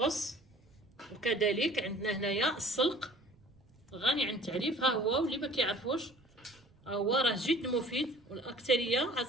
وكذلك عندنا هنايا السلق غني عن التعريف. ها هو، واللي ما كيعرفوش هو راه جد مفيد والاكثريه هاد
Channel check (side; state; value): right; noise; rumble, 29 dB below the sound